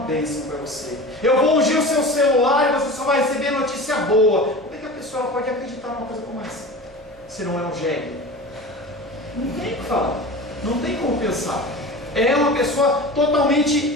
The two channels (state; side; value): noise; right; hum, 27 dB below the sound